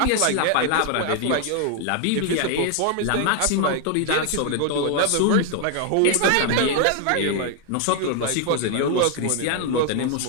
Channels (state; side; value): different; both; correlation 0.00